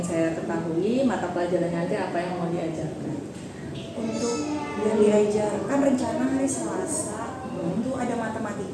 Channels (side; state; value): both; identical; correlation 1.00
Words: saya ketahui mata pelajaran nanti apa yang mau diajarkan. Untuk yang diajarkan rencana hari Selasa itu ada